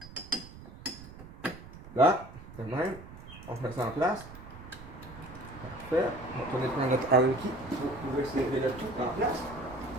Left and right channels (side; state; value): right; noise; rumble, 15 dB below the sound